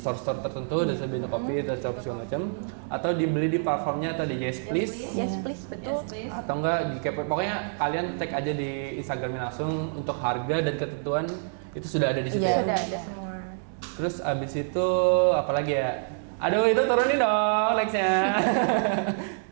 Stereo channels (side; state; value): left; silent; digital silence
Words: tertentu, dari Bento Kopi, atau segala macam, atau dibeli di platformnya atau di Yes Please. yes please betul. Yes, please. Atau enggak di kepoin. Pokoknya kalian cek aja di Instagramnya langsung untuk harga dan ketentuan itu sudah ada di situ ya. Sudah ada semua. Terus abis itu apa lagi ya? Aduh itu turunin dong nextnya.